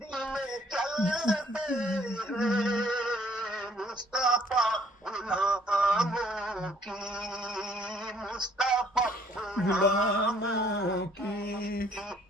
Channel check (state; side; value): normal; both; correlation 0.62